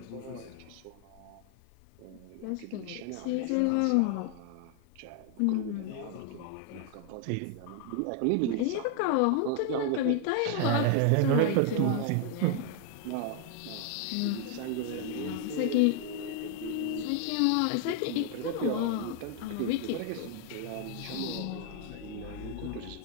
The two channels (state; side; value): different; both; correlation 0.00